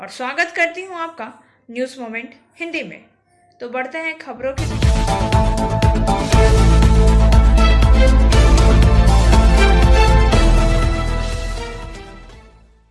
स्वागत करती हूँ आपका न्यूज़ मोमेंट हिंदी में। तो बढ़ते हैं खबरों की।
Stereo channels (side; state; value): both; identical; correlation 1.00